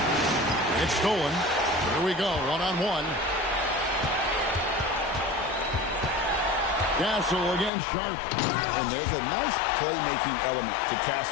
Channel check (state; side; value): drops out; right; at 7.7 s